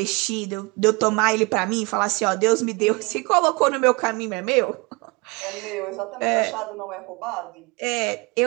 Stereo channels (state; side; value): quieter; left; 27.0 dB